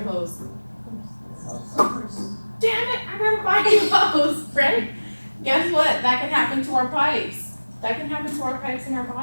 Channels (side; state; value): both; inverted; correlation -1.00